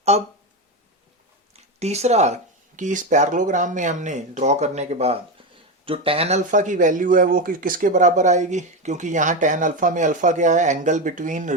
अब तीसरा कि इस पैरेललोग्राम में हमने ड्रॉ करने के बाद जो tan अल्फा की वैल्यू है वो किसके बराबर आएगी, क्योंकि यहाँ tan अल्फा में अल्फा क्या है, angle between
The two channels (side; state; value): both; normal; correlation 0.14